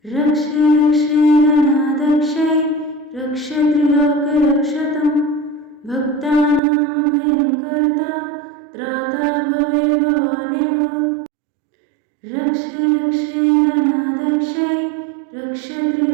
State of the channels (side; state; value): left; drops out; at 6.6 s